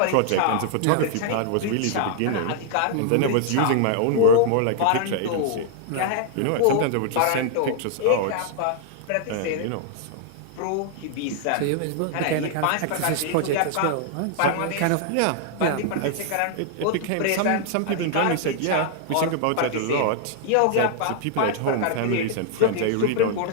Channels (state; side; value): different; both; correlation 0.00